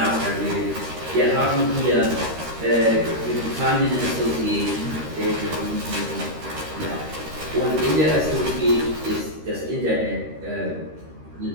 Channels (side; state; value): left; late; 13 ms